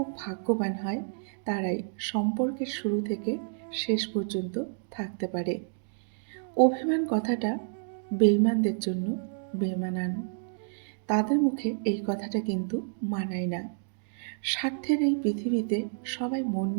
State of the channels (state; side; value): silent; left; digital silence